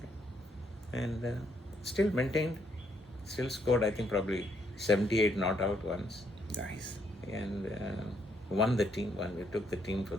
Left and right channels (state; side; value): normal; both; correlation 0.72